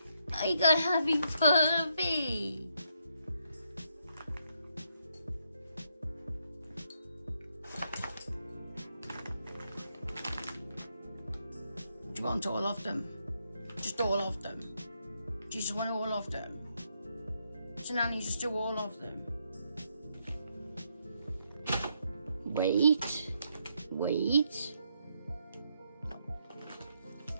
I got a happy puppy. Do you want all of them? Just all of them? Do you just want all of them? So Nanny, just do all of them. Wait.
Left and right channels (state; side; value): inverted; both; correlation -0.77